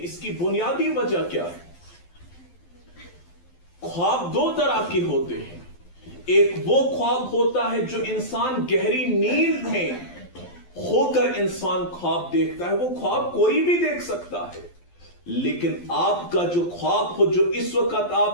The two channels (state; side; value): late; right; 12 ms